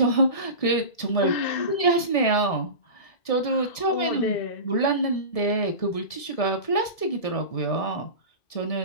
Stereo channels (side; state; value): right; late; 1.7 ms